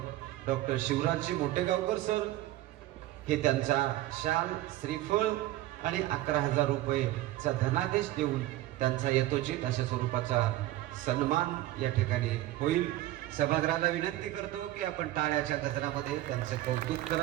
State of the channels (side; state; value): left; quieter; 15.7 dB